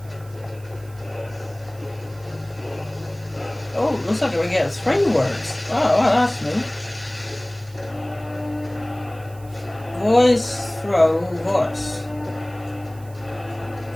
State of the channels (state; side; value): noise; right; hiss, 25 dB below the sound